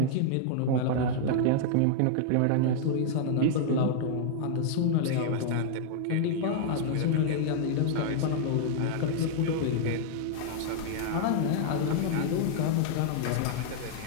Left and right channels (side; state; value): both; different; correlation -0.01